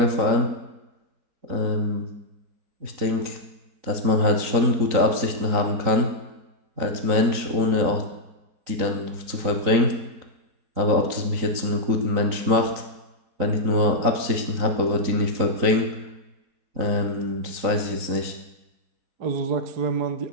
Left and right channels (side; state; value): left; late; 3.9 ms